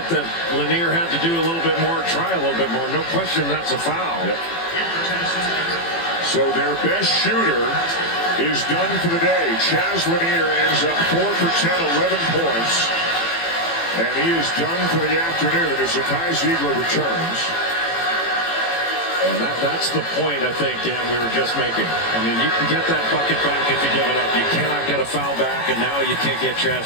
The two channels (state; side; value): late; right; 18 ms